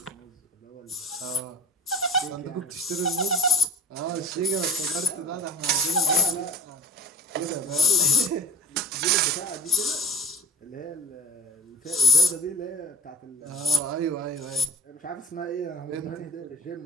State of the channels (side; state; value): both; normal; correlation 0.40